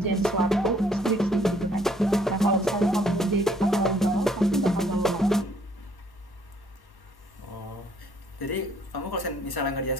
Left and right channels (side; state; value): both; normal; correlation 0.64